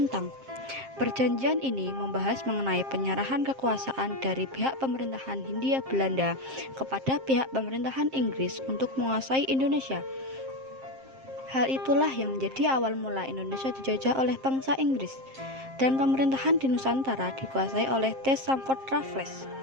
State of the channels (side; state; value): left; late; 7.5 ms